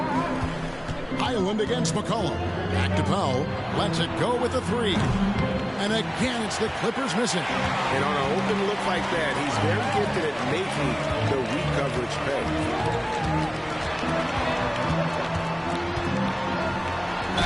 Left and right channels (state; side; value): identical; both; correlation 1.00